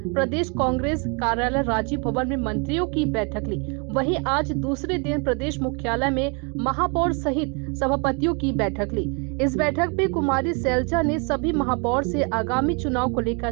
प्रदेश कांग्रेस कार्यालय राजीव भवन में मंत्रियों की बैठक ली। वहीं आज दूसरे दिन प्रदेश मुख्यालय में महापौर सहित सभापतियों की बैठक ली। इस बैठक में कुमारी सैलजा ने सभी महापौर से आगामी चुनाव को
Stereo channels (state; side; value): quieter; left; 33.9 dB